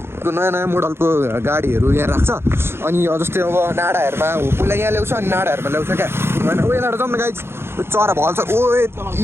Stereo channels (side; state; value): left; late; 0.12 ms